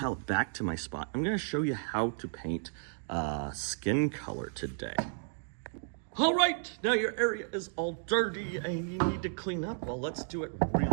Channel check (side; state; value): left; silent; digital silence